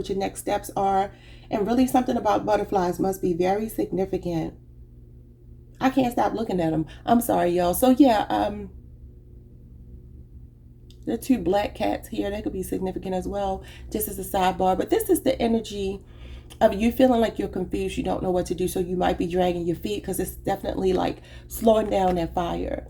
your next steps are. And really something about butterflies must be very significant. I can't stop looking at them. I'm sorry, y'all. So yeah, there are two black cats here. That could be significant as well, just as a sidebar. But this is the energy of you feeling like you're confused. You don't know what to do. So you might be dragging your feet because it's definitely like slowing down that fire.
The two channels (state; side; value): identical; both; correlation 1.00